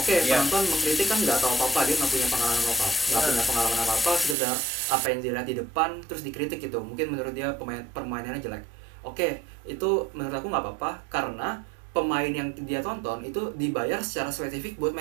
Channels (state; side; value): drops out; left; at 4.4 s